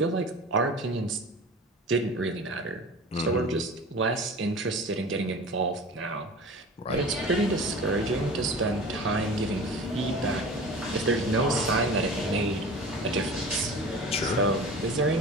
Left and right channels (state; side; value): normal; both; correlation 0.37